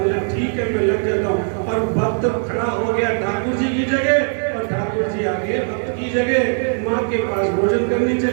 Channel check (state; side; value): silent; left; 59 dB below the other